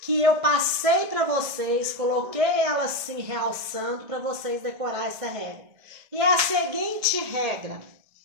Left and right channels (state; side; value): late; left; 1.7 ms